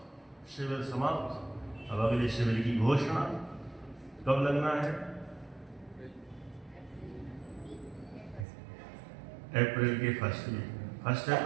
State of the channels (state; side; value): drops out; left; at 8.5 s